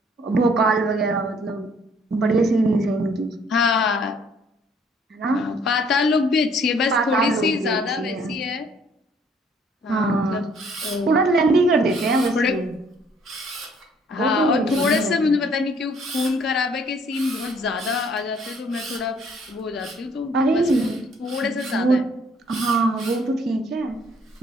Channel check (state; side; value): normal; both; correlation 0.62